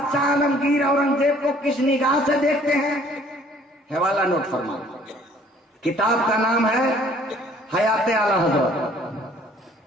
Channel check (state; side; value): normal; both; correlation 0.57